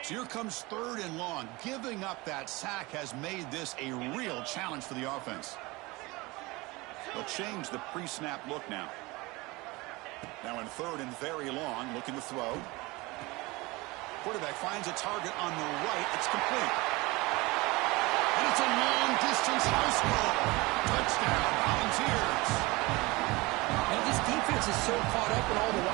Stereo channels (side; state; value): left; quieter; 23.0 dB